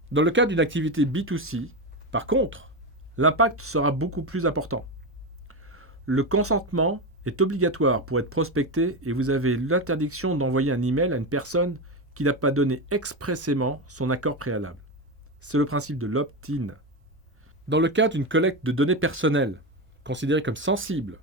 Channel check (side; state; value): both; normal; correlation 0.15